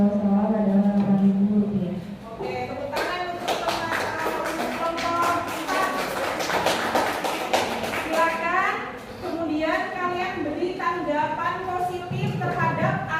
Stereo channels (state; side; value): identical; both; correlation 1.00